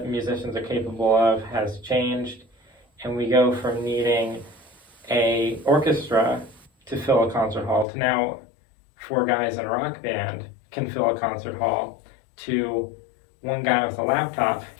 musicians are capable of has changed, and we go from needing a orchestra to fill a concert hall to now 4 guys in a rock band can fill a concert hall to 1 guy with a laptop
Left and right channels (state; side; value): drops out; right; at 7.9 s